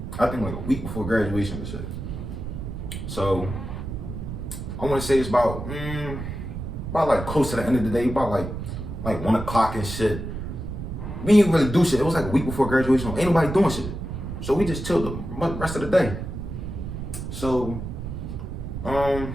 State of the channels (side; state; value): right; noise; rumble, 6 dB below the sound